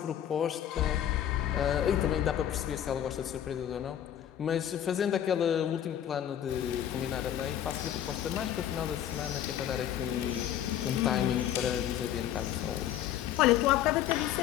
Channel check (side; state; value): right; quieter; 10.8 dB